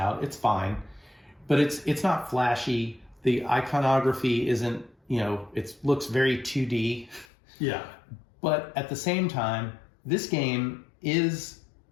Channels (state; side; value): drops out; right; at 7.2 s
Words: It's fine, but it's not flashy. The iconography isn't, it looks very 2D. Yeah. But at the same time, this game is